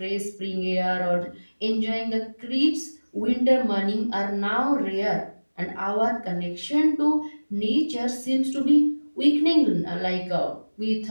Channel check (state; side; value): inverted; both; correlation -1.00